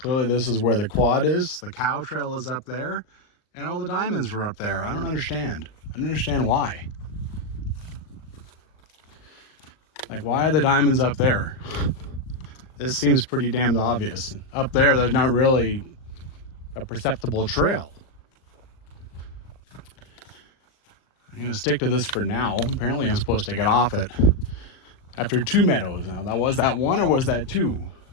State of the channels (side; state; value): right; late; 39 ms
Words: this is where the quad is. The cow trail is up there. And all the diamonds were up there. I don't understand. I don't understand why. Like, why are the diamonds up there? This seems pretty damned obvious. Up there, there's not really a perceptible trail. I'm gonna stick to this for now. Apparently I'm supposed to get off it after 2 meadows. Now, that was that one or was that 2?